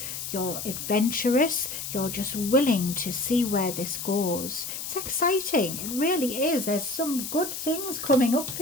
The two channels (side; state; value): left; noise; hiss, 6 dB below the sound